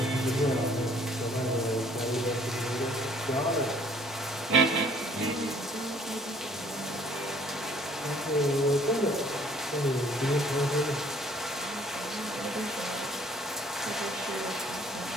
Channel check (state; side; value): normal; both; correlation 0.58